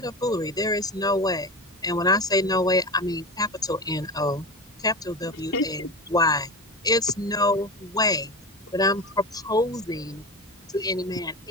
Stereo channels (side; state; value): both; normal; correlation 0.25